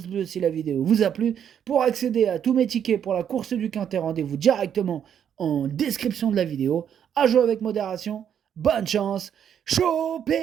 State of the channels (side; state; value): left; quieter; 8.8 dB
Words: bleu si la vidéo vous a plu. Pour accéder à tous mes tickets pour la course du Quintet, rendez-vous directement en description de la vidéo. À jouer avec modération. Bonne chance.